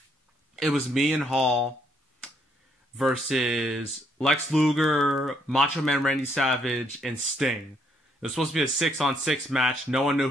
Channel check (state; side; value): normal; both; correlation 0.71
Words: It was me and Hall versus Lex Luger, Macho Man Randy Savage, and Sting. It was supposed to be a 6-on-6 match. No one knew